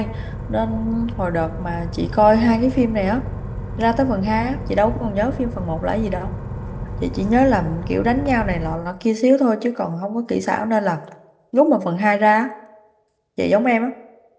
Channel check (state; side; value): identical; both; correlation 1.00